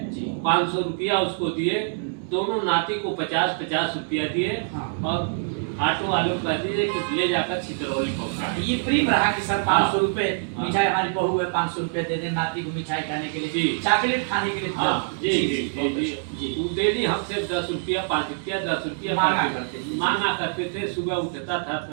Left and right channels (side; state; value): left; silent; digital silence